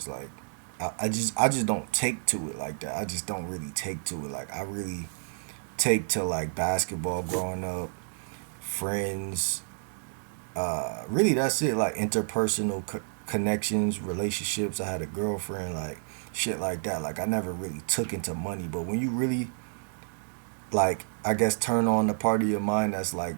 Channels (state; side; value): silent; left; digital silence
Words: Like I just don't take to it like that. I just don't really take to it. Like I really take to like basketball growing up, friends. Really that's it. Like interpersonal connections, relationships. I had a girlfriend, like shit like that. Like I never really took into money. But when you really like I guess turn on the part of your mind that's like